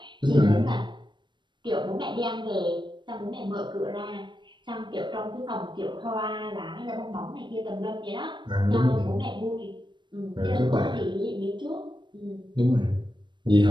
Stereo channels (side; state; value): left; late; 0.22 ms